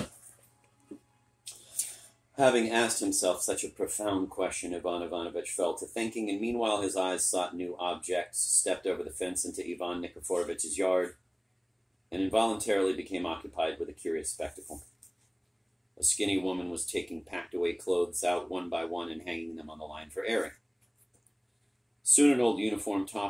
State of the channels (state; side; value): identical; both; correlation 1.00